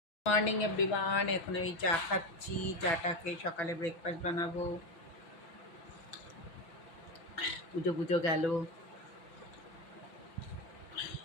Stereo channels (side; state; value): right; late; 6.1 ms